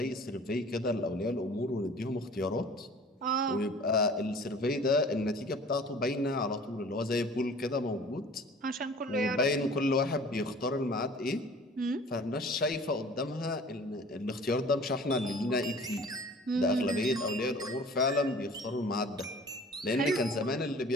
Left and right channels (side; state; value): both; normal; correlation 0.47